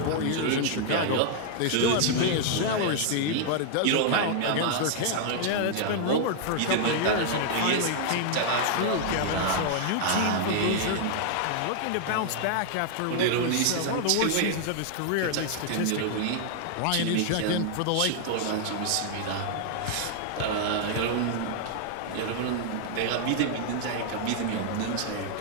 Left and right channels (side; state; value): both; different; correlation 0.00